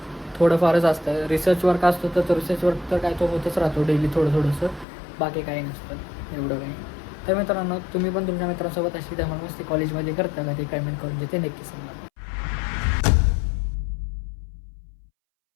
थोडंफारच असतं. रिसर्च वर्क असतं तर रिसर्च वर्क तर काय तो होतच राहतो डेली थोडंसं. बाकी काही नसतं एवढं काही. तर मित्रांनो तुम्ही पण तुमच्या मित्रांसोबत अशी धमाल मस्ती कॉलेजमध्ये करता का ते कमेंट करून जे ते नक्की सांगा.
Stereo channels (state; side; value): drops out; right; at 4.9 s